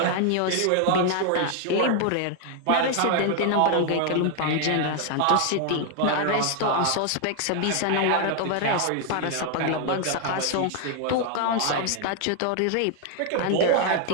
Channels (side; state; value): both; different; correlation 0.00